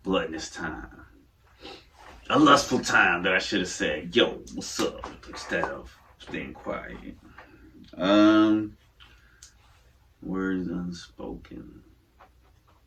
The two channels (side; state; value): both; identical; correlation 1.00